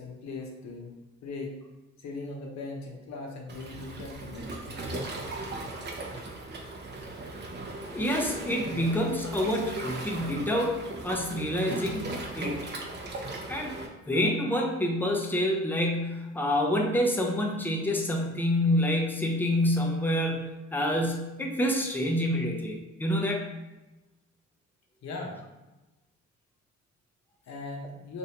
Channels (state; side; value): normal; both; correlation 0.48